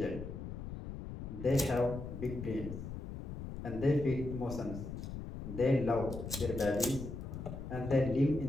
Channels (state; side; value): noise; left; rumble, 8 dB below the sound